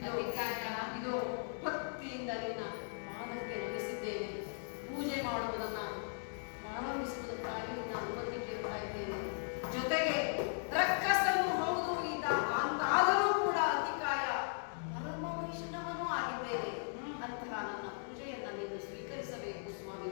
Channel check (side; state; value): right; silent; digital silence